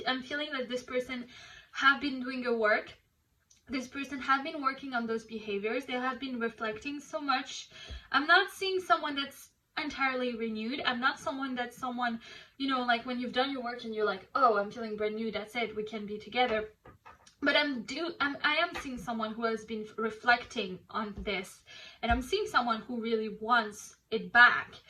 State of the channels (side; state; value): both; identical; correlation 1.00